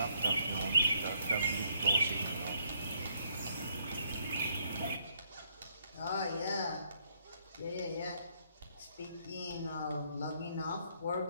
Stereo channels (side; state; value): both; inverted; correlation -0.69